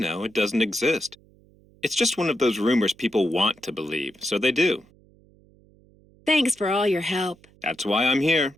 it doesn't exist. It's just one of those rumors people want to believe, so they do. Thanks for all your help. That's why I'm here.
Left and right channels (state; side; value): noise; right; hum, 29 dB below the sound